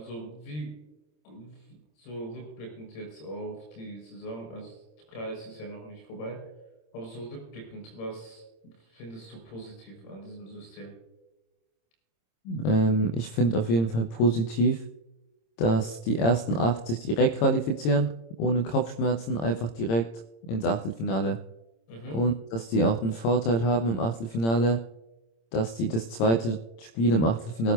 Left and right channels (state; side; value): late; right; 26 ms